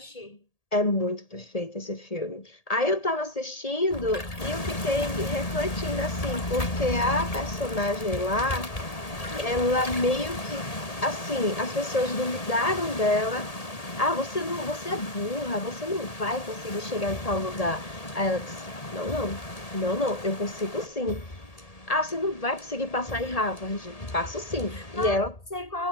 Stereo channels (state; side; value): late; right; 1.8 ms